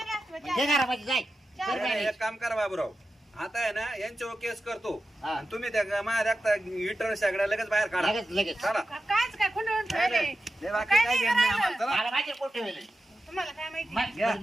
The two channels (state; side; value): normal; both; correlation 0.92